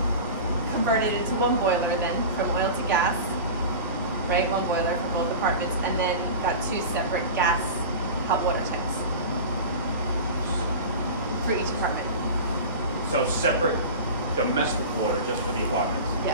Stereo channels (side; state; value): both; inverted; correlation -0.31